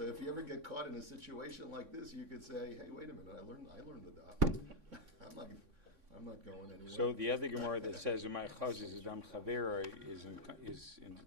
if you ever get caught in a situation like this, you could say, "Hey, wait a minute! I learned the daf. I'm not going anywhere." So the other Gemara that says "Umay Chaz is Adam Chavera"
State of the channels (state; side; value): late; left; 3.6 ms